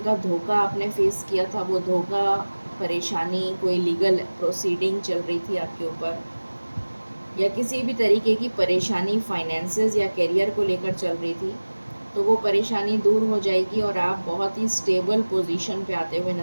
धोखा आपने फेस किया था, वो धोखा, परेशानी, कोई लीगल प्रोसीडिंग चल रही थी आपके ऊपर, या किसी भी तरीके की परेशानी फाइनेंसेस या करियर को लेकर चल रही थी, तो वो परेशानी दूर हो जाएगी, और आप बहुत ही स्टेबल पोजीशन पे आते हुए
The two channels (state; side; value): inverted; both; correlation -1.00